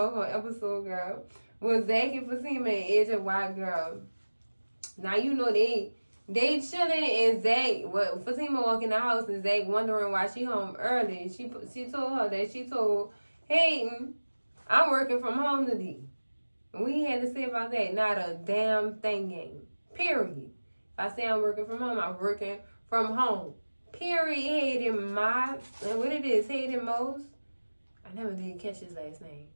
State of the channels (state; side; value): inverted; both; correlation -1.00